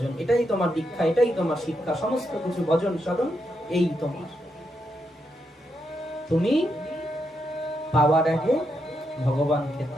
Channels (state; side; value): normal; both; correlation 0.82